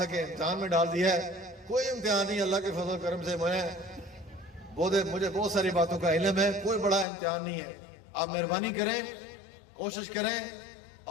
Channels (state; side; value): drops out; right; at 7.1 s